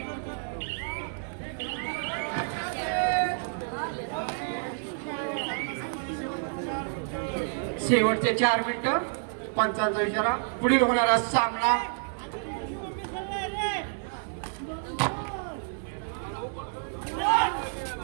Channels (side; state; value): left; silent; digital silence